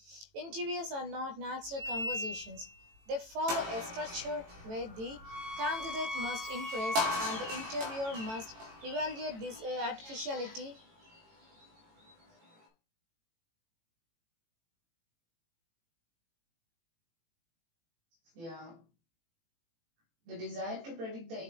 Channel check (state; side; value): late; left; 18 ms